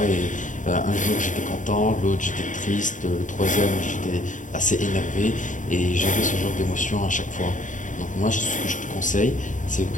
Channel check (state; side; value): late; right; 0.37 ms